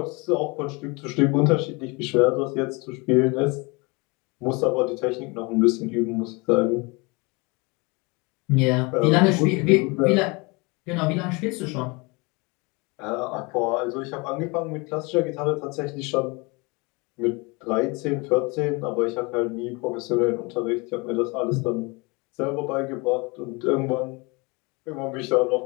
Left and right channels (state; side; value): quieter; right; 27.6 dB